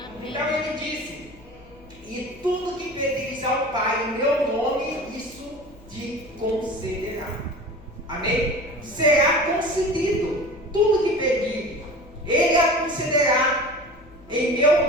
Amém? Então ele disse, e tudo que pedires ao Pai em meu nome, isso te concederá. Amém? Será concedido. Tudo que pedir, Ele a concederá em meu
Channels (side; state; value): left; noise; hum, 24 dB below the sound